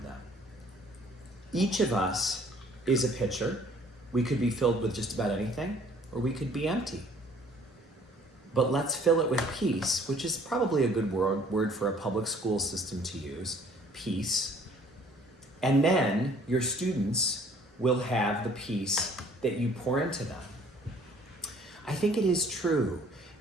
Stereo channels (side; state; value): both; normal; correlation 0.56